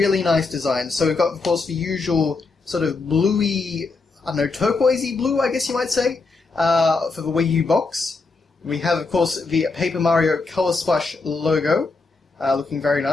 nice design. So we've got, of course, the usual sort of bluey, I don't know, turquoisey blue, I guess you might say, for the Wii U box. We have, of course, the Paper Mario Color Splash logo, looking very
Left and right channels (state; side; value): quieter; right; 3.9 dB